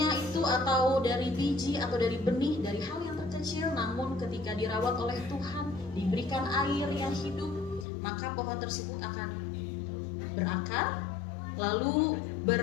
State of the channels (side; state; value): right; drops out; at 7.9 s